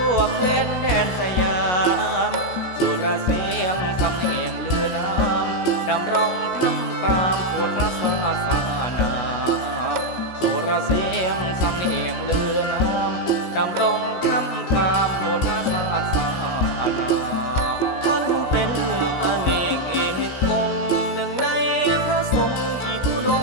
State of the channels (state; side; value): late; right; 16 ms